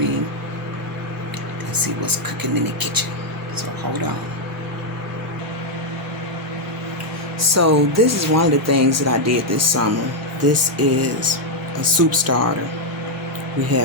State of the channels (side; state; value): both; normal; correlation 0.00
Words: and see what's cooking in the kitchen. So hold on. So this is one of the things that I did this summer. This is a soup starter. We